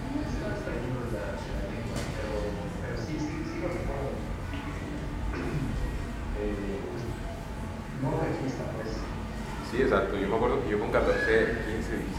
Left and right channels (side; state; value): both; identical; correlation 1.00